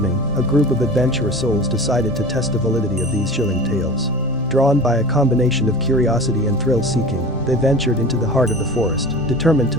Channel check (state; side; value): normal; both; correlation 0.36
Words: a group of adventurous souls decided to test the validity of these chilling tales. Drawn by a combination of curiosity and thrill-seeking, they ventured into the heart of the forest, determined